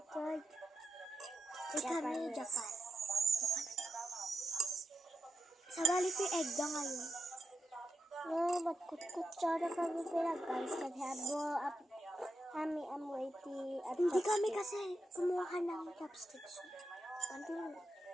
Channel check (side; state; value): both; normal; correlation 0.87